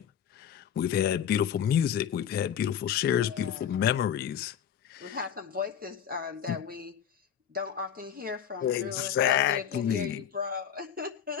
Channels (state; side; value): quieter; right; 8.9 dB